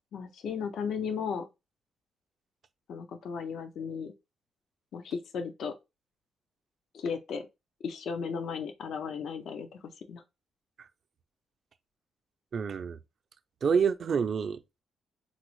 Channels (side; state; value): both; normal; correlation 0.72